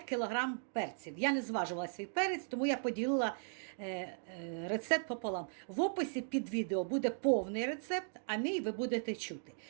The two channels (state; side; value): silent; left; digital silence